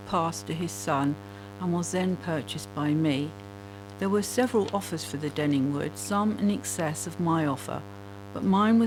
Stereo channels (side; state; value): both; identical; correlation 1.00